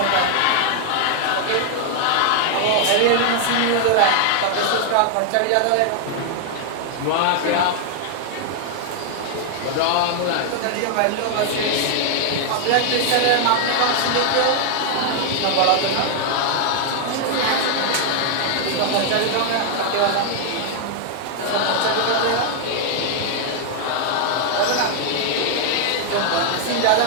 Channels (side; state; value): both; different; correlation 0.00